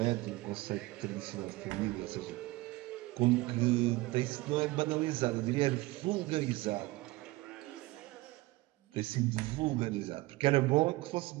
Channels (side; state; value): left; quieter; 20.5 dB